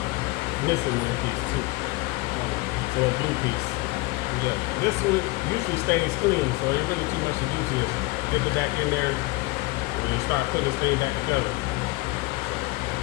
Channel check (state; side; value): quieter; right; 21.9 dB